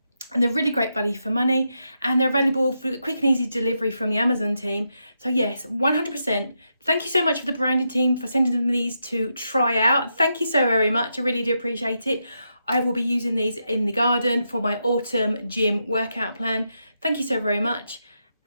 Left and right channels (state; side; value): inverted; both; correlation -0.84